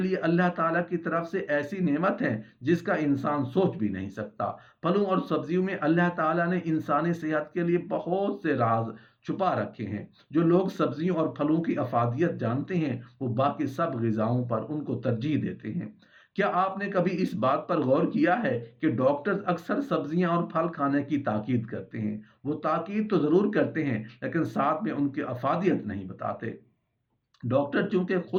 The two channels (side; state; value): both; identical; correlation 1.00